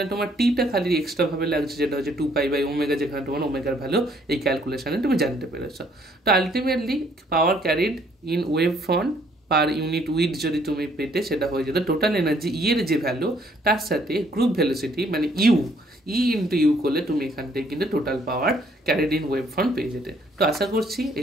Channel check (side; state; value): both; normal; correlation 0.65